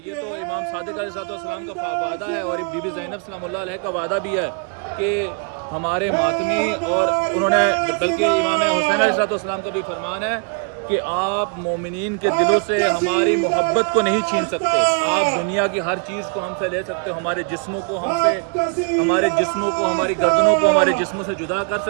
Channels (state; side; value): quieter; left; 37.6 dB